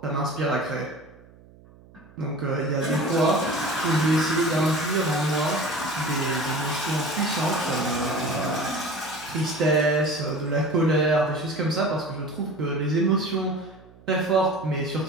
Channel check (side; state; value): right; noise; hum, 24 dB below the sound